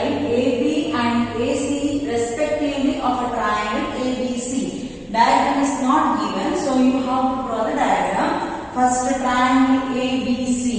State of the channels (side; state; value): both; identical; correlation 1.00